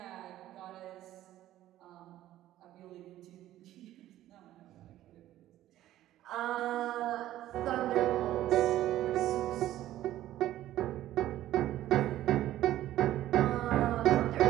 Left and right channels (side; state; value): left; quieter; 13.8 dB